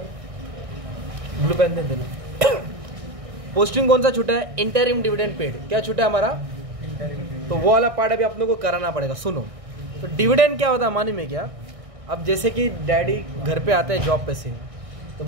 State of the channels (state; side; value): late; left; 1.6 ms